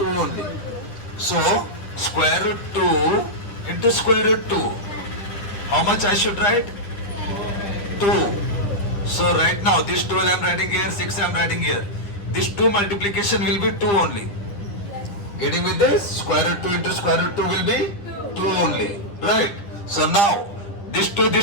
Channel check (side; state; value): right; late; 10 ms